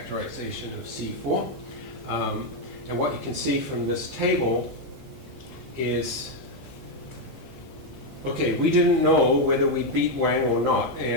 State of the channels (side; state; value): both; normal; correlation 0.03